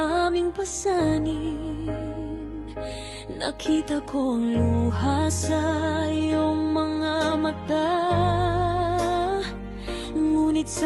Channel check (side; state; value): both; identical; correlation 1.00